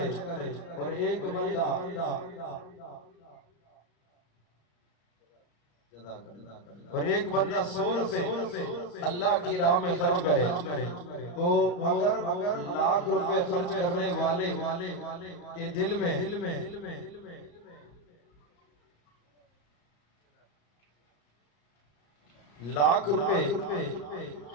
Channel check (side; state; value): right; late; 34 ms